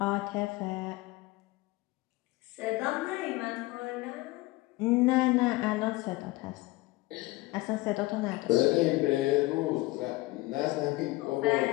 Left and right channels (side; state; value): right; quieter; 20.4 dB